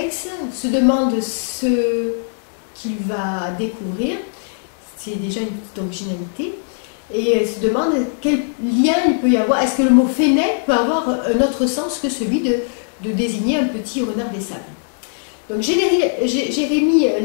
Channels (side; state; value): right; silent; digital silence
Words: se demande ce qu'il va découvrir. C'est déjà une petite originalité. Et se demande quel lien il peut y avoir. Est-ce que le mot Fennec peut avoir un autre sens que celui de désigner un petit renard des sables? Donc Jérémy